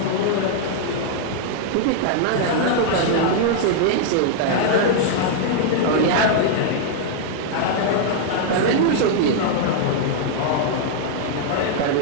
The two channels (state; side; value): different; both; correlation -0.01